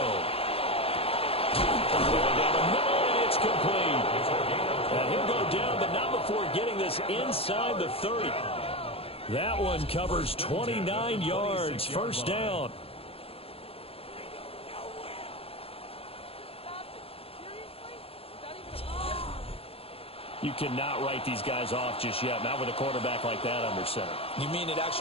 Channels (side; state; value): right; late; 0.28 ms